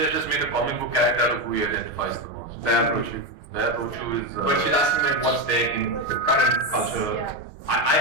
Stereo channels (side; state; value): right; late; 6.5 ms